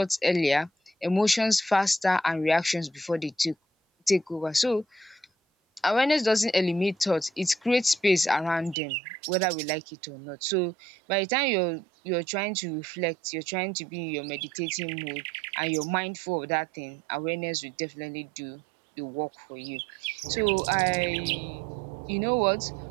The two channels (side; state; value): left; drops out; at 8.8 s